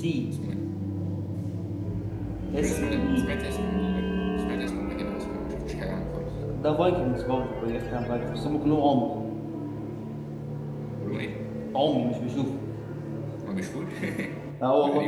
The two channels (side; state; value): both; identical; correlation 1.00